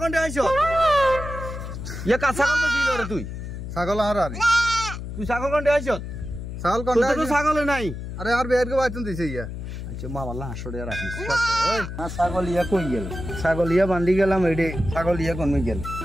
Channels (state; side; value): noise; left; hum, 8 dB below the sound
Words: কোনটা আইছো ইয়া কা ছাগল বেশি রে তুই ছাগল আর আর তুই ছাগল কোনটা আইছো ছাগল কোনটা তুই তো ছাগল নাই আরে আর বের কে বাইতুন দিছে ইয়া আচ্ছা মামাল্লাহ হাসড়ে রাখিস ওই না ছাগলিয়া কই গেল ছাগলিয়া বান্ধি গেলাম এডে ছাগলিয়া কোন গেল